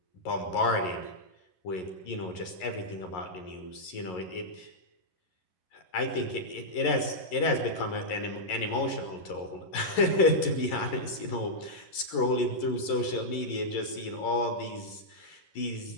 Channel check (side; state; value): right; late; 11 ms